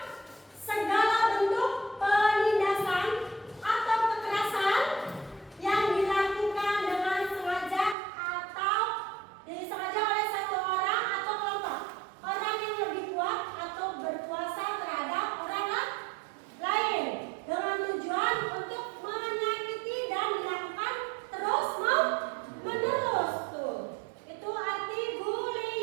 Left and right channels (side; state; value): left; drops out; at 8.0 s